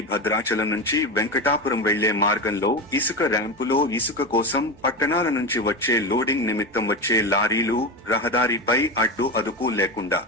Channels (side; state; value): both; normal; correlation 0.19